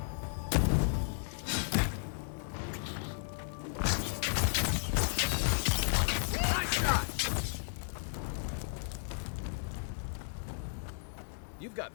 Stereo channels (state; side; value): silent; right; digital silence